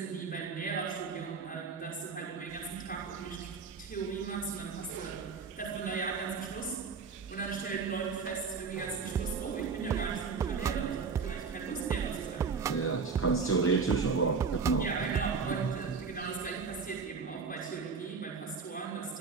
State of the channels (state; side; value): quieter; left; 5.3 dB